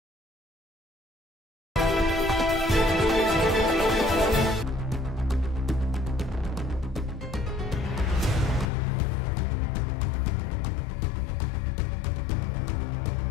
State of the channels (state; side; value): drops out; right; at 8.7 s